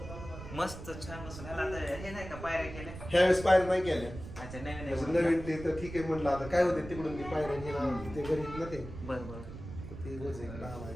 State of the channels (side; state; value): right; noise; rumble, 11 dB below the sound